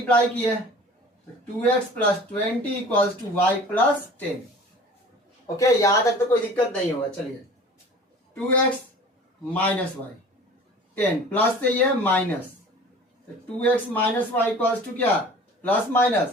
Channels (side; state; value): both; normal; correlation 0.43